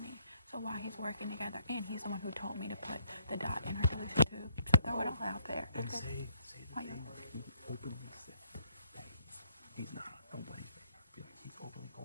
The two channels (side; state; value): both; inverted; correlation -0.70